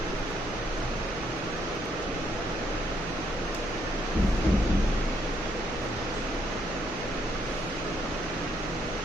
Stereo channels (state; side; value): noise; right; hum, 13 dB below the sound